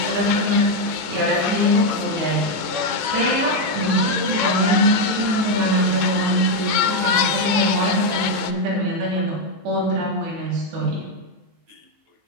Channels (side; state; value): left; late; 18 ms